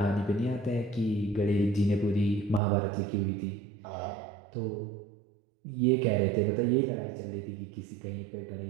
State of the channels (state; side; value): drops out; left; at 2.6 s